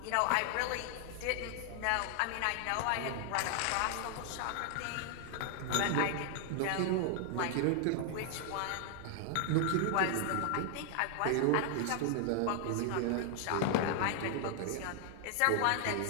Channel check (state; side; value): different; both; correlation 0.00